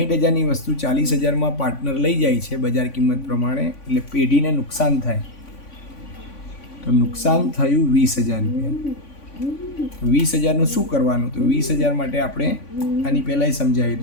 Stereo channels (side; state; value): right; late; 3.5 ms